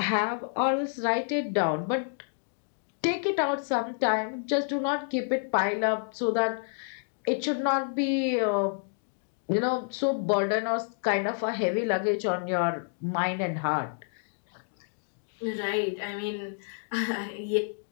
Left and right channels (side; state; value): right; silent; digital silence